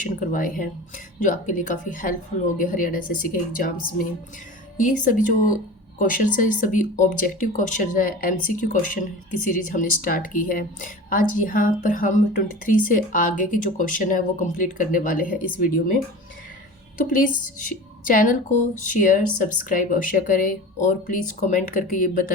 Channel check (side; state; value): both; normal; correlation 0.34